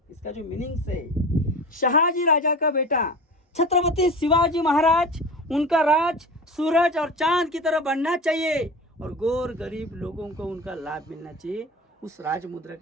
इसका जो मीनिंग्स है, शाहजी राजा का बेटा छत्रपति शिवाजी महाराज, उनका राज सूरज और चांद की तरह बढ़ना चाहिए और गौर गरीब लोगों को उनका लाभ मिलना चाहिए। उस राज मुद्रा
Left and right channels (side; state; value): both; normal; correlation 0.32